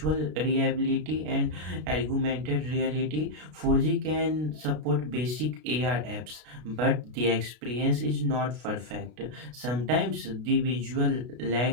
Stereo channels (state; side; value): late; left; 33 ms